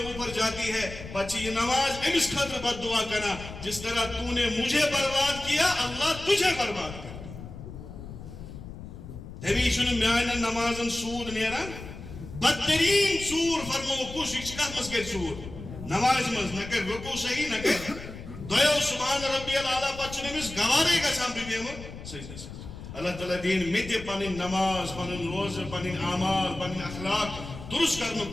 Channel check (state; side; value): noise; left; rumble, 12 dB below the sound